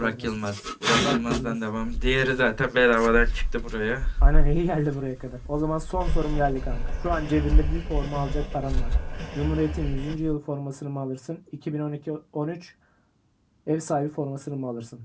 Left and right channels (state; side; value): identical; both; correlation 1.00